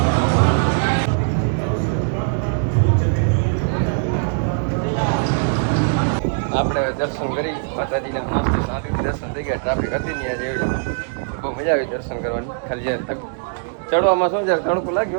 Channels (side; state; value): left; silent; 58 dB below the other